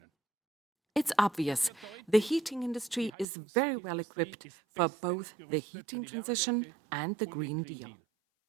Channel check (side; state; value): left; drops out; at 3.2 s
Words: It's obvious the heating industry is very well equipped for both the heating transition and the Green Deal.